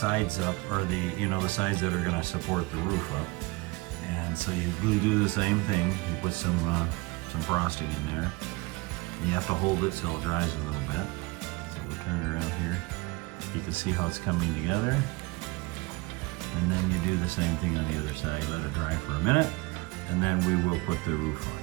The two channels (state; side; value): quieter; left; 24.6 dB